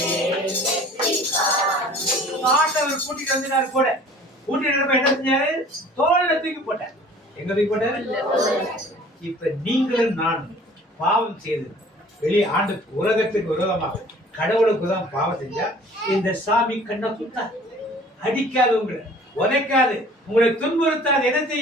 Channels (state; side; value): normal; both; correlation 0.49